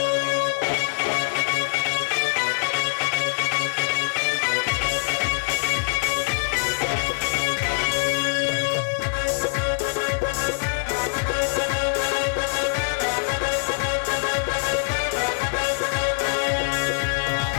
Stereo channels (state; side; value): silent; right; 63 dB below the other